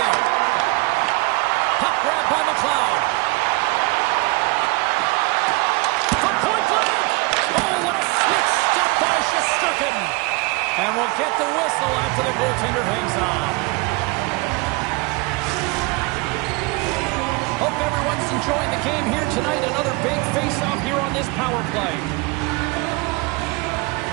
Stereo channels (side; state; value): left; quieter; 25.5 dB